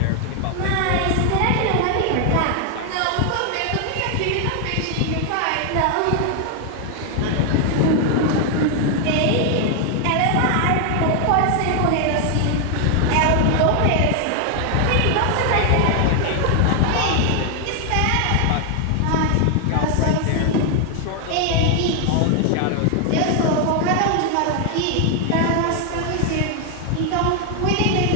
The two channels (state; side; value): different; both; correlation 0.00